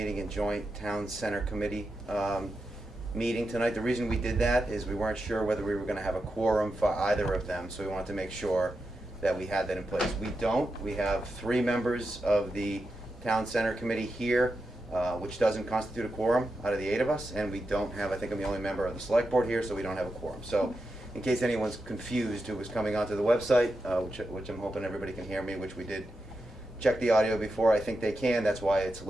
and joint town center committee meeting tonight. The reason we did that is we weren't sure whether we were gonna have a quorum for either of them, so we wanted to make sure that we had that in place. We don't. We have 3 members of the town center committee here, which doesn't constitute a quorum out of the 8 of us, and we don't have, I think I'm the only member of the select board here, so we don't have a quorum. So in case anyone's confused who was coming onto the website, which I'm hoping everybody can hear me, which we did check the audio before, I think they can, that's why it's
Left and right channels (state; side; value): normal; both; correlation 0.88